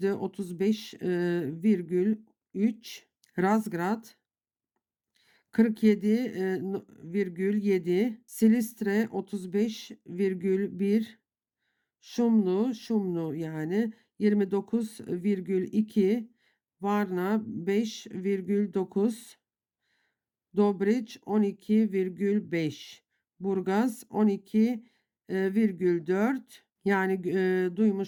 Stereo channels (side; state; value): both; identical; correlation 1.00